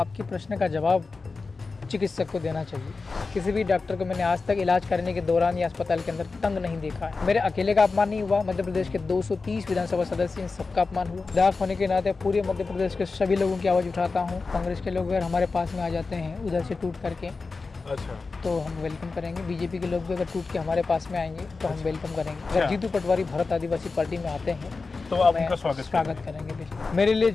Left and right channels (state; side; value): quieter; right; 4.1 dB